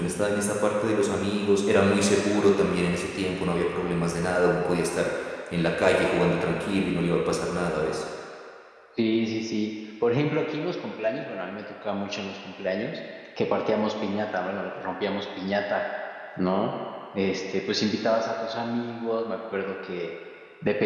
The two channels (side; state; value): both; identical; correlation 1.00